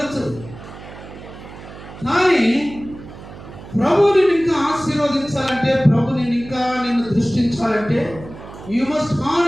కానీ ప్రభుని ఇంకా ఆశీర్వదించాలంటే, ప్రభుని ఇంకా నిన్ను దృష్టించాలంటే, you must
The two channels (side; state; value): right; noise; hum, 16 dB below the sound